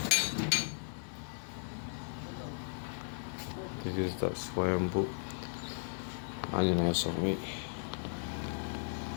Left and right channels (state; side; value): silent; right; 54 dB below the other